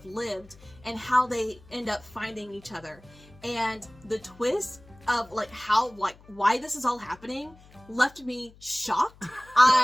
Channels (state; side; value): noise; left; hum, 24 dB below the sound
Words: lived and how they end up finding each other. And the twist of why this is all happening left me shocked.